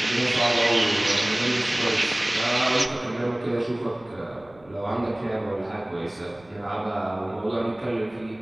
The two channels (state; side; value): noise; right; rumble, 28 dB below the sound